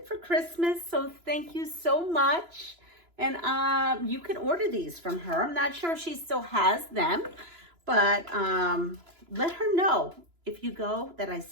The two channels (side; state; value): left; late; 3.0 ms